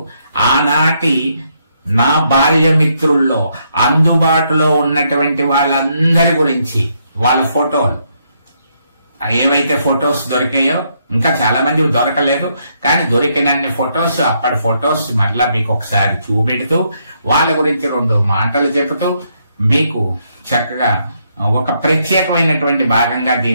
ఆనాటి నా బాల్య మిత్రుల్లో అందుబాటులో ఉన్నటువంటి వాళ్ళందరి గురించి, వాళ్ళ ఫోటోలు, ఏవైతే ఫొటోస్ దొరికాయో, ఇంకా చాలా మంది దొరకలేదు కానీ దొరికినన్ని ఫొటోస్, అప్పటి ఫొటోస్ మళ్ళా మీకు ఒకసారి చూపెడుతూ వాళ్ళ గురించి 2 మాటలు చెబుతూ మీకు చక్కగా ఒక ప్రత్యేకమైనటువంటి భాగంగా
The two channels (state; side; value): inverted; both; correlation -0.75